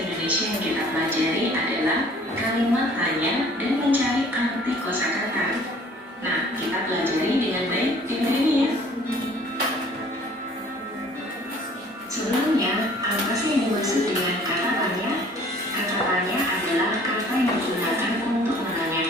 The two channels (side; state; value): both; normal; correlation 0.53